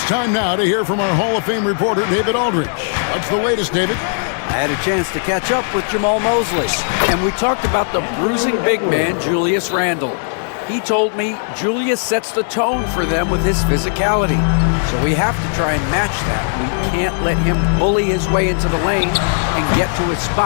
time now to hear from our Hall of Fame reporter, David Aldridge. What's the latest, David? I had a chance to catch up with Jamal Mosley, and we talked about the bruising big man, Julius Randle. He told me Julius sets the tone for them with his physicality. So we have to try and match that. We can't let him bully his way into the lane and get to his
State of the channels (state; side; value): silent; right; digital silence